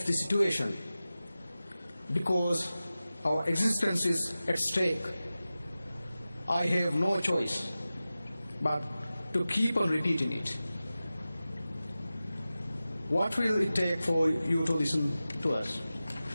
the situation, because our existence is at stake, I have no choice but to keep on repeating it. What will it take for you to listen to us?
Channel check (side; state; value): both; inverted; correlation -0.95